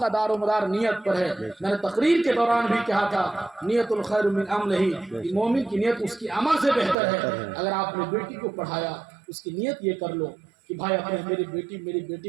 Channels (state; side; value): drops out; left; at 7.0 s